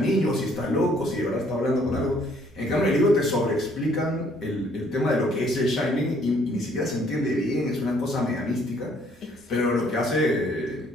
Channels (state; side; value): normal; both; correlation 0.63